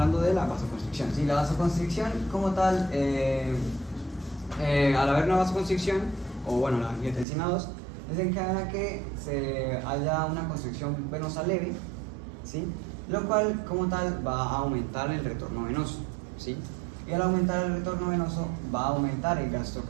de la vasoconstricción. ¿Sí? La vasoconstricción como tal al haber una vasoconstricción, o bueno, la angiotensina 2, desencadena que se haya una constricción venosa leve, ¿sí? Lo cual como tal va a aumentar el retorno venoso, ¿sí? Y al aumentar el retorno venoso va a aumentar el gasto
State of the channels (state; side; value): drops out; left; at 7.2 s